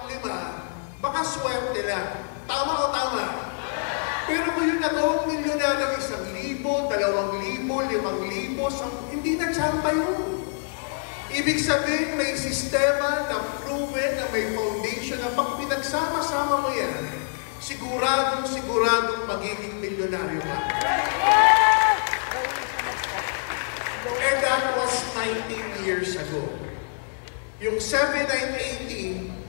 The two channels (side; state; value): right; silent; digital silence